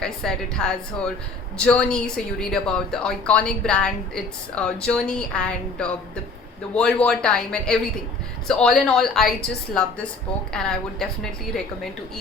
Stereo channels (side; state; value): right; quieter; 3.5 dB